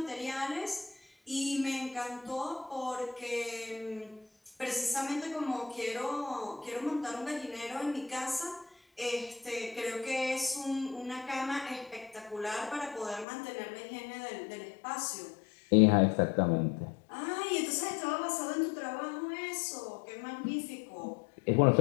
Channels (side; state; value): right; drops out; at 13.2 s